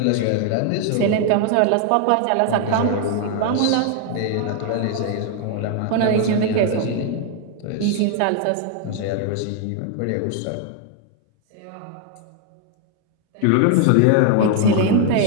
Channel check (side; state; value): both; different; correlation 0.00